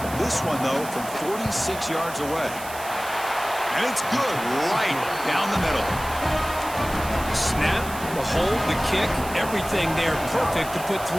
This one, though, from 46 yards away. And it's good right down the middle. Snap, The hold, the kick, everything there perfect to put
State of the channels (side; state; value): right; noise; hiss, 13 dB below the sound